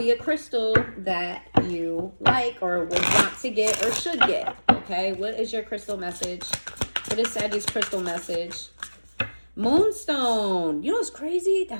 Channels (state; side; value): inverted; both; correlation -1.00